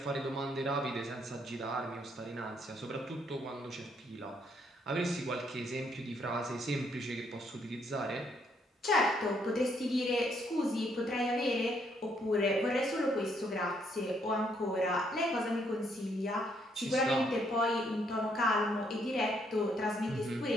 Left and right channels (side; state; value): both; normal; correlation 0.71